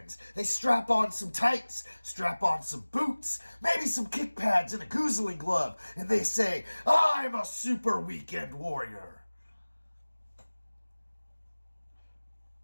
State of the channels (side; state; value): both; inverted; correlation -1.00